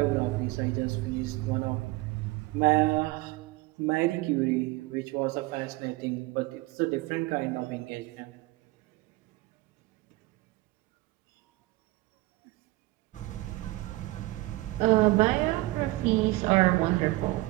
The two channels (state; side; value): quieter; left; 20.5 dB